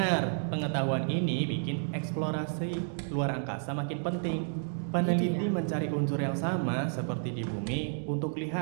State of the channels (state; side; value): silent; left; digital silence